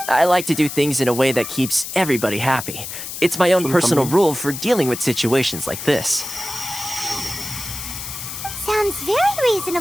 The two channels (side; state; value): left; noise; hiss, 8 dB below the sound